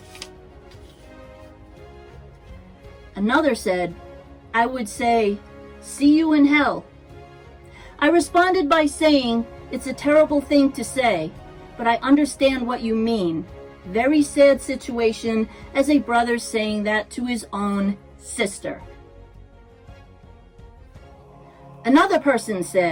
Another said, I would say, see you in hell. I responded by saying, it's a terrible thing to say, but I understand what you mean. Very sad situation as a brother saying that to his own sister. Another person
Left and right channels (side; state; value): both; identical; correlation 1.00